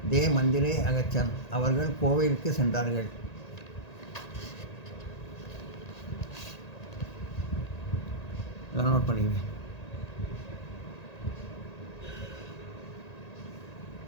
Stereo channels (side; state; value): right; late; 1.9 ms